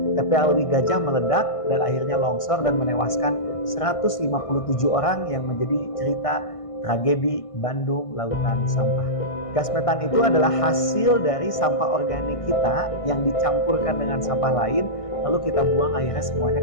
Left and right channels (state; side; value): late; right; 1.6 ms